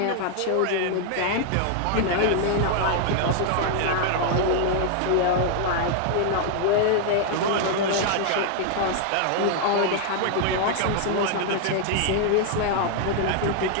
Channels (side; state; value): both; different; correlation 0.00